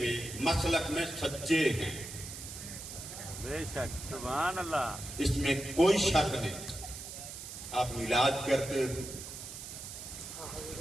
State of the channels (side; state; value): right; noise; hiss, 10 dB below the sound